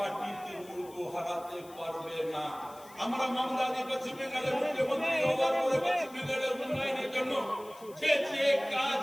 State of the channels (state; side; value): noise; left; hiss, 22 dB below the sound